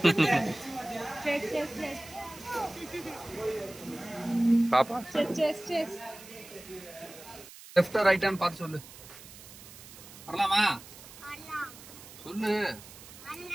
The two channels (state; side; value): noise; right; hiss, 17 dB below the sound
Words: பாப்பா லெஃப்ட் ரைட்டான்னு பார்த்து சொல்லு. வரலாமா? சொல்லு.